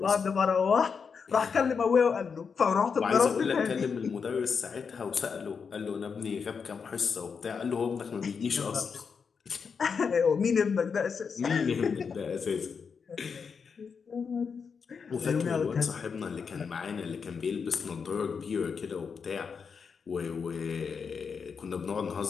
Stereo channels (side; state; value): right; quieter; 5.9 dB